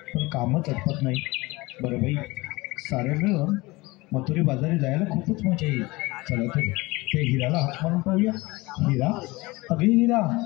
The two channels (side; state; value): right; quieter; 22.3 dB